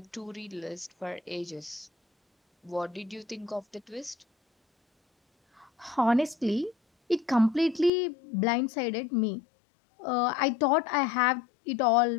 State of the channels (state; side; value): drops out; right; at 7.9 s